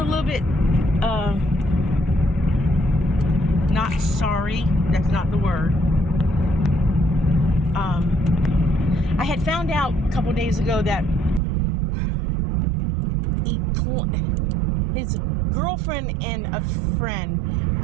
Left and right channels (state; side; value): drops out; left; at 11.4 s